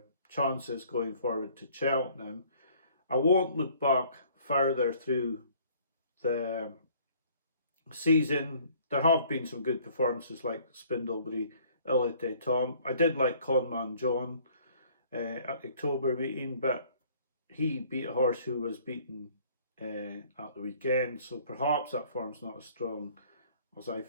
chances going forward to Cheltenham. I won't look back further through the season. There have been some good performances like Spindlebury, Ilite Tom. I did like Conman John at the October meeting, but he beat a horse who was beaten at the weekend, so perhaps that form's not as strong as I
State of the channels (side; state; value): both; inverted; correlation -0.57